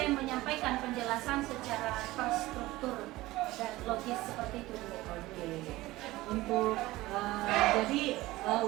menyampaikan penjelasan secara terstruktur dan logis seperti itu Bu. Oke.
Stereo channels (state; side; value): quieter; left; 18.3 dB